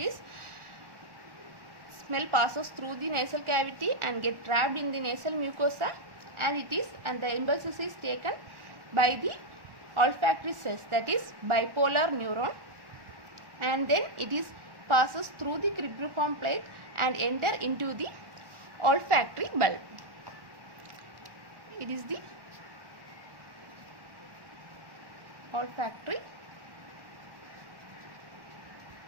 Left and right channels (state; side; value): late; left; 1.1 ms